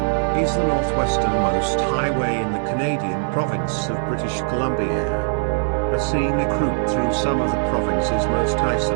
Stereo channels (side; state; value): left; silent; 65 dB below the other